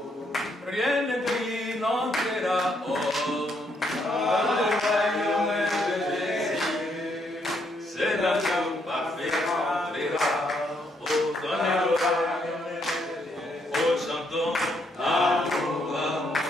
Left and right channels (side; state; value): both; normal; correlation 0.74